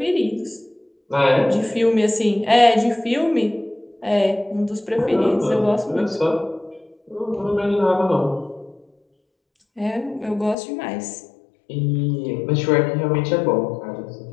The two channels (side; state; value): right; drops out; at 10.6 s